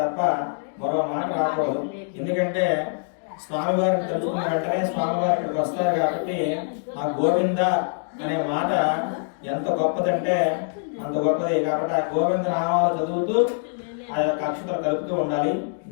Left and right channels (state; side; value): silent; right; digital silence